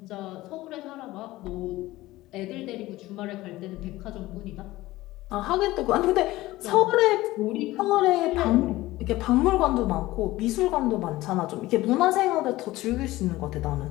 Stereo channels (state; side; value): quieter; right; 17.7 dB